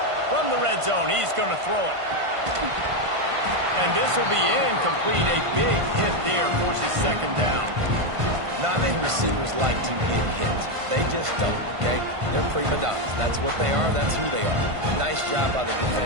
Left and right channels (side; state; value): left; late; 1.5 ms